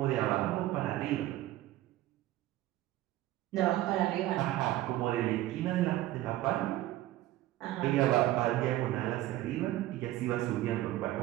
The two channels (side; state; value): left; quieter; 15.3 dB